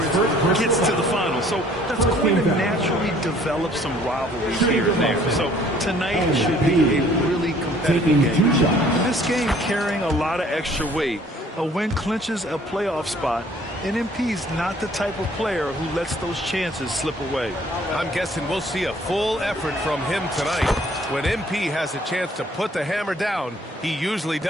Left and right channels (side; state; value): both; normal; correlation 0.57